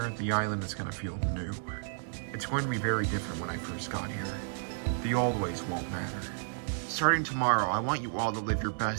the island is going to feel new. It's going to be very different when I first got here. The old ways won't matter. Starting tomorrow, I want you all to live your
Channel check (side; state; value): left; silent; digital silence